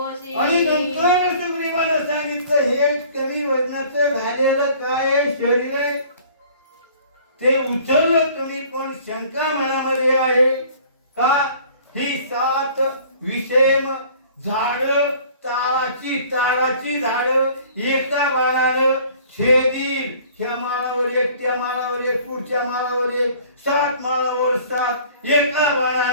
आणि नंतर सुग्रीवानं सांगितलं हे कमी वजनाचं झालेलं काय शरीर आहे ते उचललं तुम्ही. पण शंका मनामध्ये आहे का ही 7 विषम झाड ताराची झाड एका बाणानं छेदील. ह्या माळावर एक, त्या माळावर एक, पुढच्या माळावर एक, 7 माळावर 7 एका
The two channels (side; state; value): both; inverted; correlation -0.51